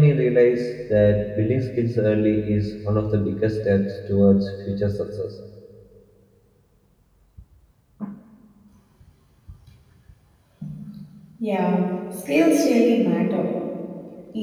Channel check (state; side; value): identical; both; correlation 1.00